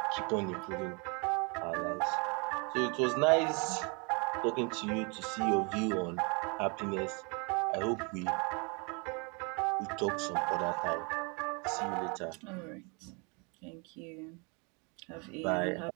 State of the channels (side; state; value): left; quieter; 32.5 dB